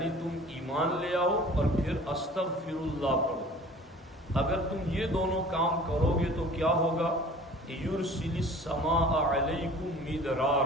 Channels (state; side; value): normal; both; correlation 0.45